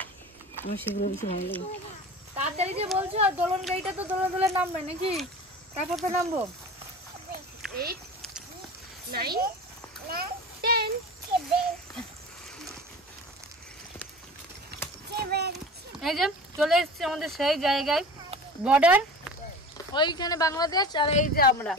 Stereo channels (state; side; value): normal; both; correlation 0.36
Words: আমার সেগুলো বেশি ভালো লাগে। তাড়াতাড়ি যে বলছো, দোলন গাড়িটা তো দোলা দোলা নামবে নাকি? তারপর তো নামবো। 8 9 10 এই যে চলে এসেছি আমাদের সেই জায়গায়, বর্ডার। ওইখানে বাংলাদেশ, আর এই যে আমরা।